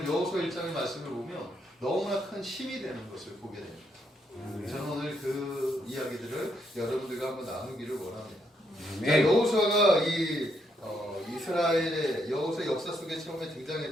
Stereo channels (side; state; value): both; normal; correlation 0.76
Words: 여호수아 1장의 말씀을 보면 너무나 큰 힘이 되는 것을 보게 됩니다. 저는 오늘 그 이야기들을 여러분들과 한번 나누기를 원합니다. 자, 여호수아가 이 이스라엘의 여호수아 역사 속에 처음에